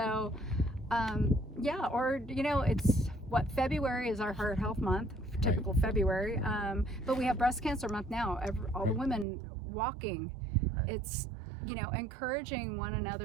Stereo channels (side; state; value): left; drops out; at 9.2 s